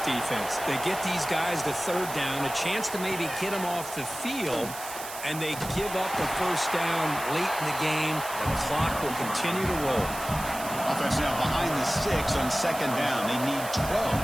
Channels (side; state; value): right; noise; hiss, 10 dB below the sound